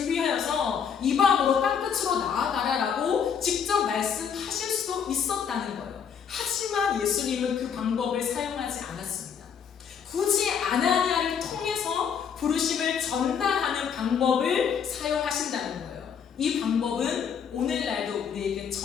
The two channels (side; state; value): right; quieter; 7.3 dB